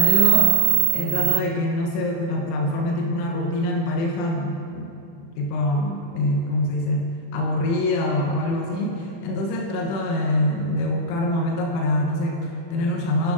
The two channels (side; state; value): right; late; 36 ms